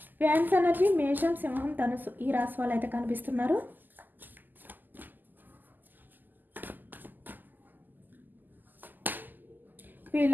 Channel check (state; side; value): late; left; 0.087 ms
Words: ఫ్యాన్స్ ఎనర్జీ మేషం, సింహం, ధనుసు ఈ రాశి వాళ్ళు అయితే కనిపిస్తున్నారు.